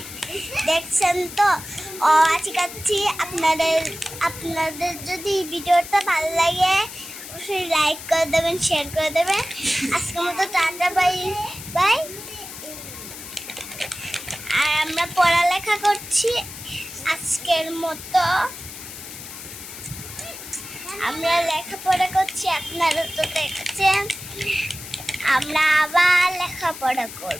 দেখছেন তো শেখাচ্ছি। আপনাদের যদি ভিডিওটা ভালো লাগে অবশ্যই লাইক করে দেবেন, শেয়ার করে দেবেন। আজকের মতো টাটা, বাই বাই। আর আমরা পড়ালেখা করছি আজকের মতো, আমরা লেখাপড়া করছি, আপনারা তো দেখছেন। আমরা আবার লেখাপড়া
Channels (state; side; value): noise; left; hiss, 12 dB below the sound